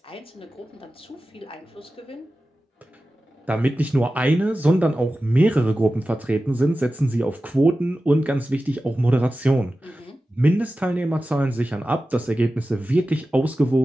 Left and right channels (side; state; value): both; normal; correlation 0.94